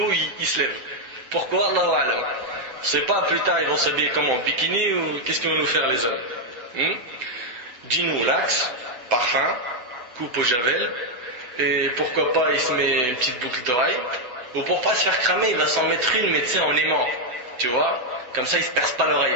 il se lève. Pourquoi? Allahu a'lam. C'est pas plus tard ils vont s'habiller comment? Bikini ou qu'est-ce qu'ils vont nous faire les hommes? Jean ou lax, parfum, coupe au javel, et pourquoi pas il se met une petite boucle d'oreille. Ou pour pas se faire cramer, il va s'en mettre une, mais tu sais, en aimant. Tu vois? Comme ça, il se perce pas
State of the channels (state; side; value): late; left; 8.0 ms